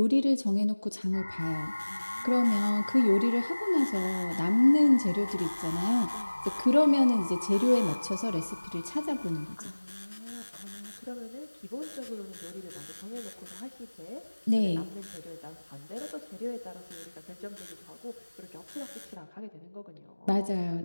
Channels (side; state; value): both; inverted; correlation -1.00